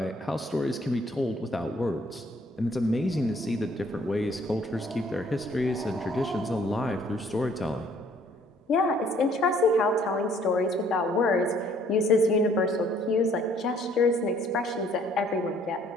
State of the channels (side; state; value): both; normal; correlation 0.61